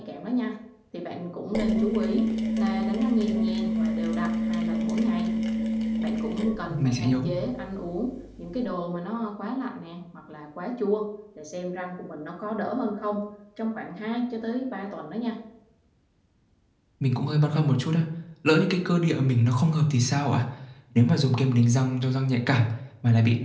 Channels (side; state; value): both; identical; correlation 1.00